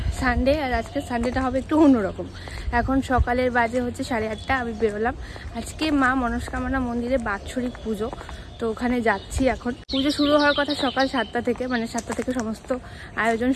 সানডে, আর আজকে সানডেটা হবে একটু অন্যরকম। এখন সকালের বাজে হচ্ছে 8:30, আমি বেরোলাম। আজকে মা মনস্কামনা মন্দিরে বাৎসরিক পুজো, তো ওখানে যাচ্ছি। এখন পুজো শুরু হওয়ার কথা সকাল 7টা থেকে, মানে 7টা থেকে সমস্ত আয়োজন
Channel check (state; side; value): identical; both; correlation 1.00